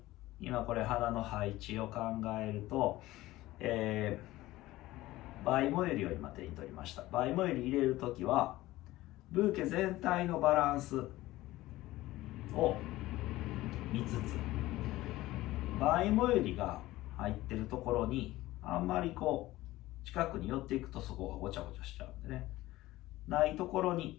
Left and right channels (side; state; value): right; quieter; 17.2 dB